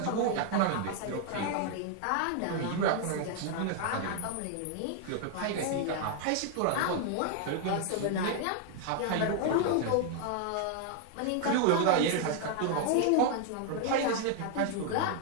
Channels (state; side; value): different; both; correlation 0.00